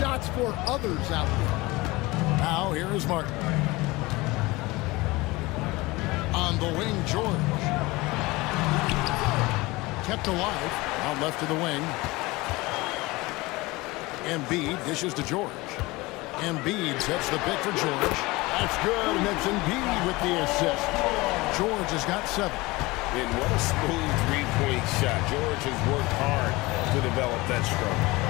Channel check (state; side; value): quieter; right; 21.9 dB